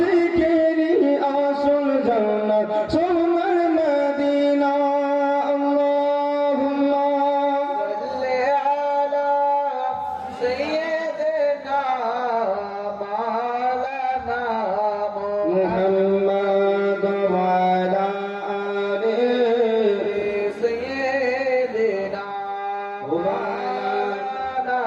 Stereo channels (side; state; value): both; identical; correlation 1.00